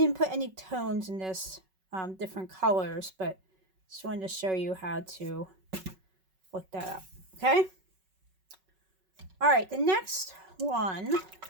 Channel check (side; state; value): left; late; 5.3 ms